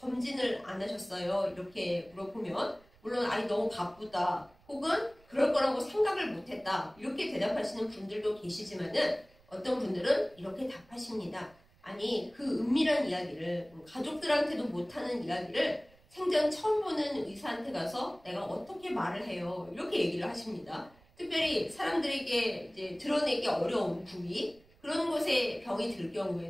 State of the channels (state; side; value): noise; right; rumble, 29 dB below the sound